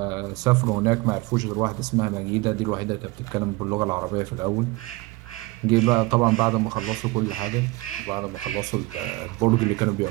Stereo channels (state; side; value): quieter; left; 22.2 dB